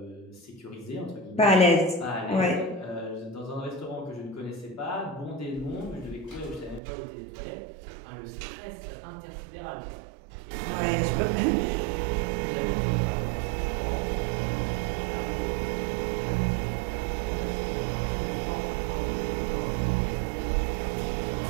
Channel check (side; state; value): left; drops out; at 6.8 s